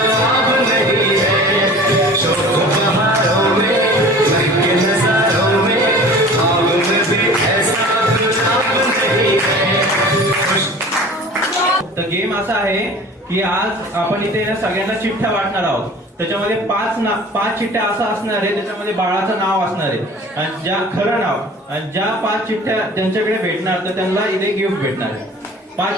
नहीं है। शोक बहारों में महके नजारों में ख्वाब में भी ऐसा गुलाब नहीं है। तर गेम असा आहे की आज आपण इथे ना सगळ्यांना चिठ्ठ्या वाटणार आहोत. त्याच्यामध्ये पाच चिठ्ठ्या असं असणार आहे, त्याच्यामध्ये बाळाचं नाव असणार आहे आणि ज्या खरं नाव आणि ज्या 5 चिठ्ठ्या ज्यांच्याकडे भेटणार तर त्यांना इथे गिफ्ट भेटणार आहे.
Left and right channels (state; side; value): normal; both; correlation 0.43